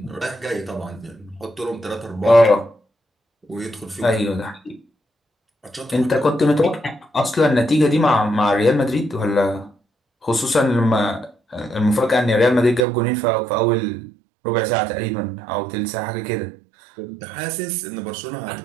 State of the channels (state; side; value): drops out; left; at 12.9 s